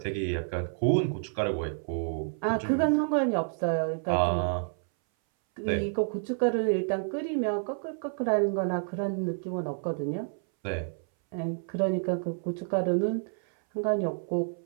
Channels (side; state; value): left; silent; 58 dB below the other